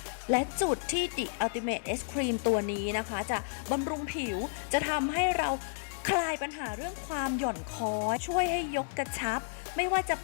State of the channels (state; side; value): silent; right; digital silence